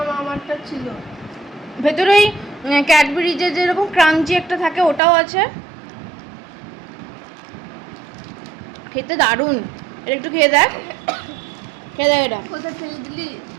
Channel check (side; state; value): left; drops out; at 5.0 s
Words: আমারটা ছিল। ভেতরে ওই ক্যাডবেরিজের যেরকম ক্রাঞ্চি একটা থাকে ওটাও আছে, খেতে দারুণ। এটা একটু খেয়ে দেখ, খেয়ে দেখ এটা। কোথায় ফেলে দিলি